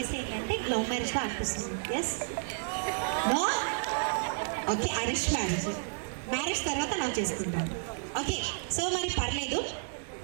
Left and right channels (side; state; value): left; silent; digital silence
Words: ఏంటంటే లవ్ మ్యారేజ్గా అనిపిస్తుంది. Yes no okay arranged marriage తర్వాత లవ్ చేసుకుంటాను. ఓకే సో మరి పర్లేదు.